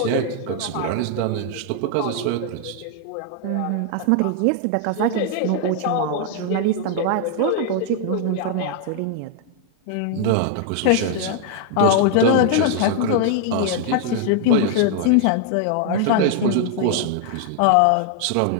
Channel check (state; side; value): different; both; correlation 0.00